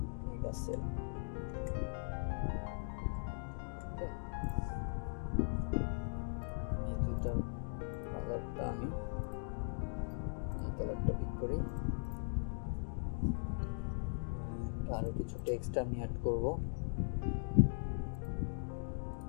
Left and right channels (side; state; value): right; silent; digital silence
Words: মেগা সেল। এই দুইটার কালারটা আমি এই কালারটা পিক করি। আরো কিছু টেক্সট আমি অ্যাড করব।